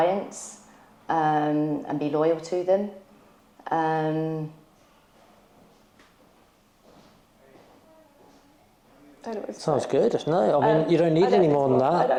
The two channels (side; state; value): both; identical; correlation 1.00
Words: and be loyal to them. I don't know what to Sounds say. good. No, I mean, you don't need any more than I that.